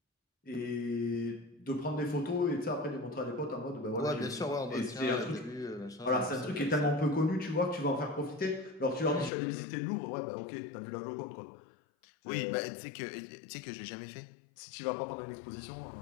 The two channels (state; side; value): drops out; right; at 9.3 s